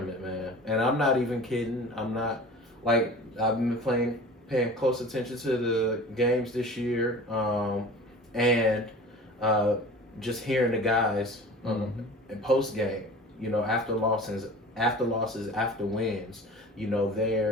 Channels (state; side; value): normal; both; correlation 0.40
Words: man. And I'm not even kidding. I'm not like I've been paying close attention to the games this year, and just hearing the guys in post game, after losses, after wins,